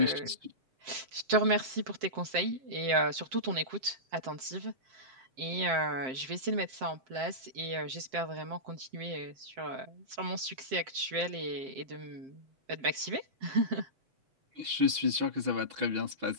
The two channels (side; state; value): left; late; 7.6 ms